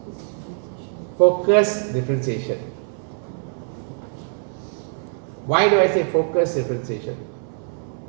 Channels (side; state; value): left; silent; 63 dB below the other